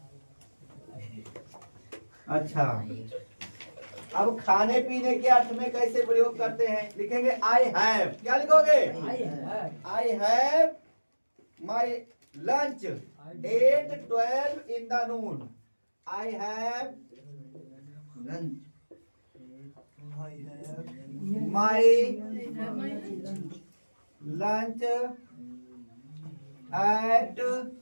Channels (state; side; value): inverted; both; correlation -1.00